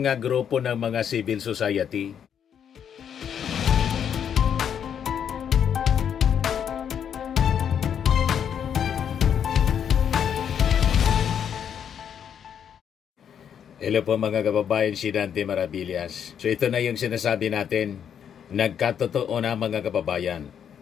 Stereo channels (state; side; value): quieter; right; 8.4 dB